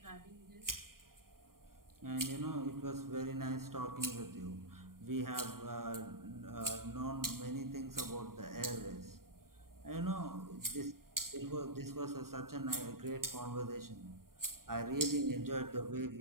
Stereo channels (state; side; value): late; left; 0.92 ms